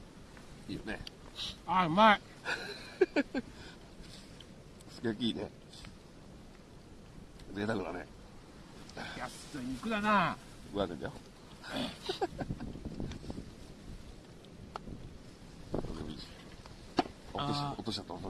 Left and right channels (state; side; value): identical; both; correlation 1.00